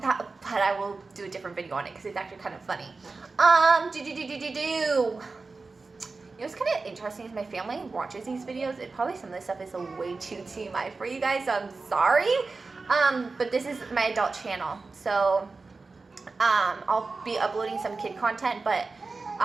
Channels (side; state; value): left; quieter; 3.9 dB